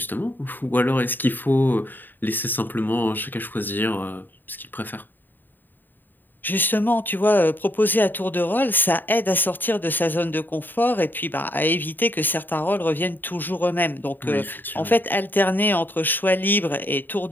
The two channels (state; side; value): late; right; 0.091 ms